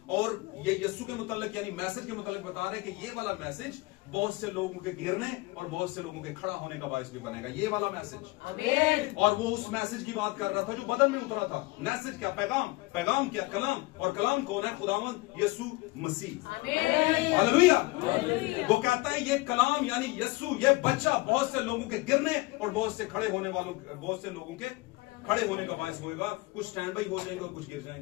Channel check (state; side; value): quieter; right; 22.6 dB